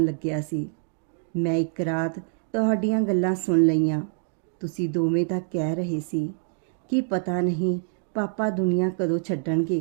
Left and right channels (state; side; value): silent; left; 60 dB below the other